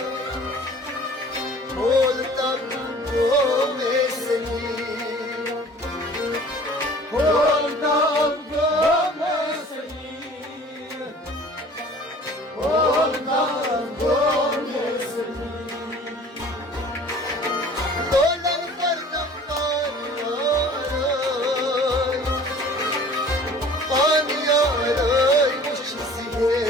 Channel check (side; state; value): both; normal; correlation 0.47